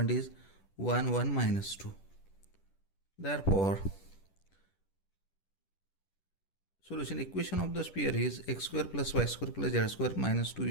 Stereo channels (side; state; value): right; late; 10 ms